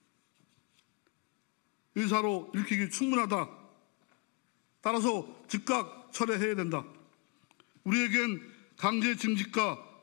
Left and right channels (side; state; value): right; quieter; 30.8 dB